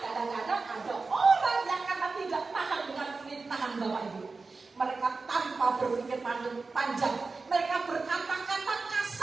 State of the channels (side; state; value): left; quieter; 4.0 dB